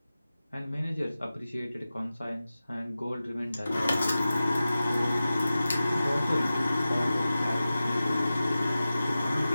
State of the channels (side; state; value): both; inverted; correlation -0.95